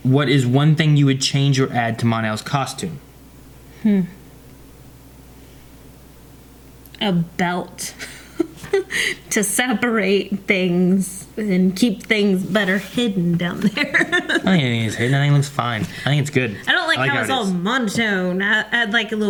what is one thing you would change or add to Mon-El's costume? A belt. To separate things and keep things better hidden down there. I don't think anything is hidden. I think it looks fine. I think it's good. I don't like how it's it all is. monotone. I'd like a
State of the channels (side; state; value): both; identical; correlation 1.00